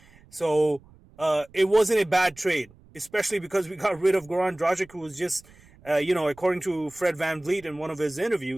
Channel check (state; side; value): noise; right; rumble, 26 dB below the sound